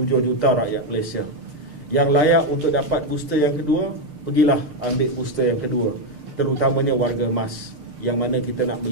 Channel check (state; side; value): late; left; 6.7 ms